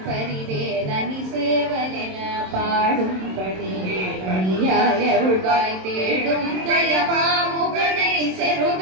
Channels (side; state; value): left; late; 27 ms